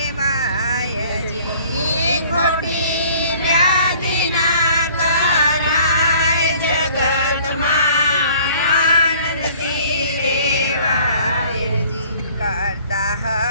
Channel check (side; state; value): both; inverted; correlation -0.53